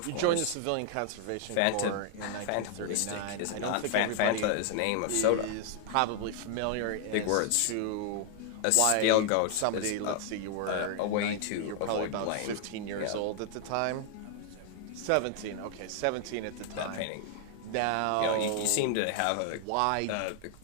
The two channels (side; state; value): both; different; correlation 0.00